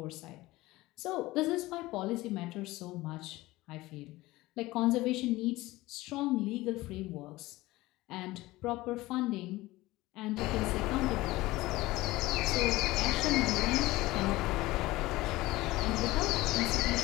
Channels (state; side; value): quieter; right; 19.0 dB